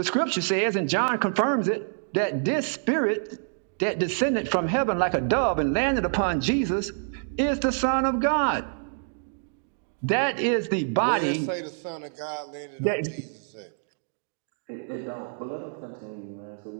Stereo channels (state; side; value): silent; left; digital silence